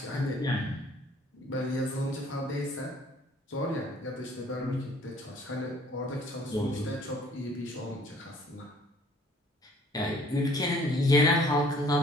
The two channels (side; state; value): both; normal; correlation 0.57